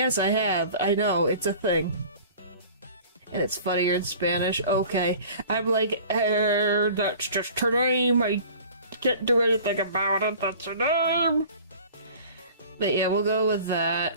I have. I know, it's a thing. And it's funnier in Spanish. Okay. I'm like, that's just her name. I can't do anything about it. That's her name. But yeah, we'll go with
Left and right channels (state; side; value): inverted; both; correlation -0.45